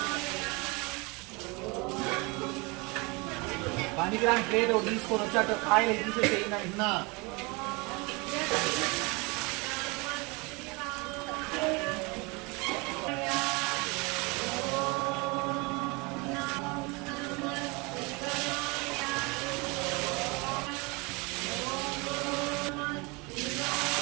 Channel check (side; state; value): left; quieter; 27.5 dB